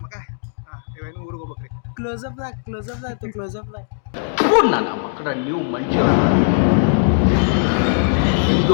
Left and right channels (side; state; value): right; silent; digital silence